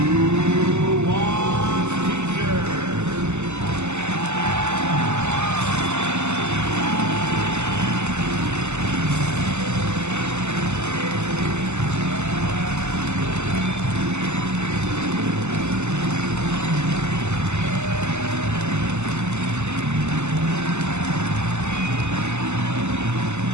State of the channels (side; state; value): left; late; 0.83 ms